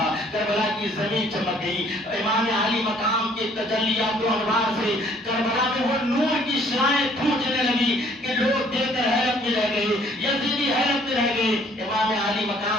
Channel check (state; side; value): normal; both; correlation 0.60